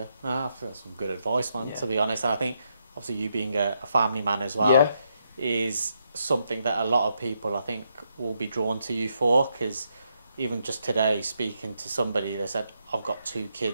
I feel that's some good advice, man, to be honest. And I think, obviously, you being a family man as well is something that a lot of people, I think, will be drawn to you for, because even just today, speaking to somebody, they said, I've got 2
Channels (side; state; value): both; inverted; correlation -0.79